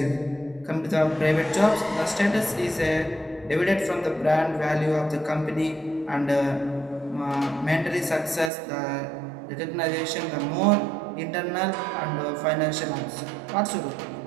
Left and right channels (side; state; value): left; drops out; at 8.5 s